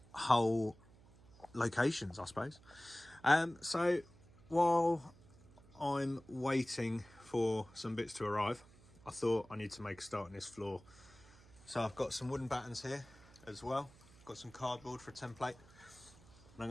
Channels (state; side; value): noise; right; hum, 24 dB below the sound